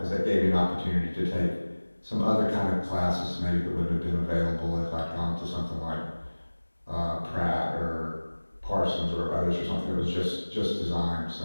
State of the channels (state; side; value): inverted; both; correlation -1.00